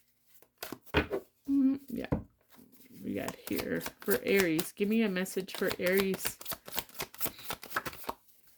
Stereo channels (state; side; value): identical; both; correlation 1.00